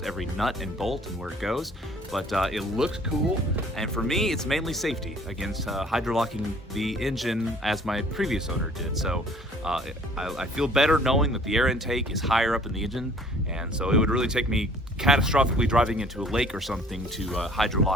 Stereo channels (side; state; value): both; normal; correlation 0.54